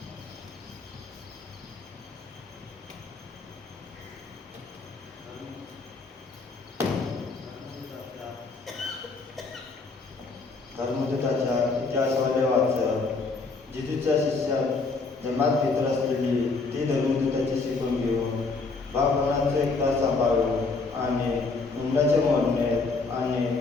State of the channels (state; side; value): quieter; right; 4.0 dB